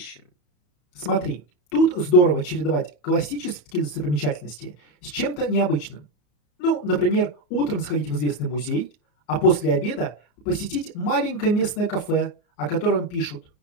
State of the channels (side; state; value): right; late; 34 ms